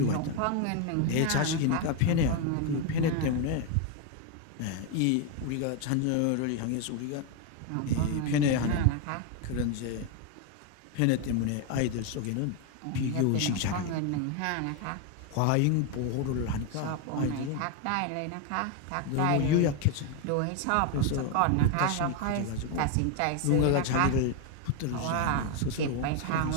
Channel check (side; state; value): both; different; correlation 0.01